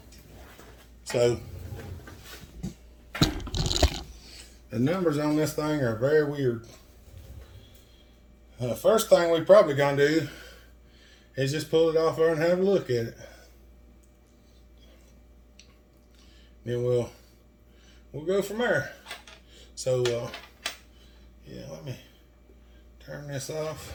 So the numbers on this thing are very weird. First thing we probably gonna do is just pull it off there and have a look at it. Then we'll go from there. So yeah, let me turn this off.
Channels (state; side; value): identical; both; correlation 1.00